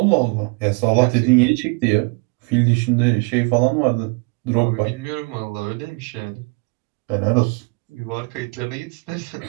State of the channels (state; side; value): quieter; left; 31.4 dB